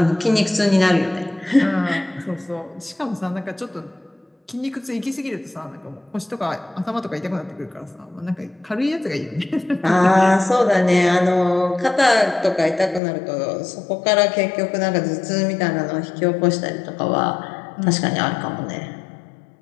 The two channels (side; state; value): right; drops out; at 13.0 s